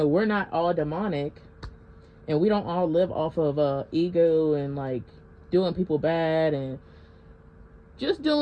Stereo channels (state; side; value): identical; both; correlation 1.00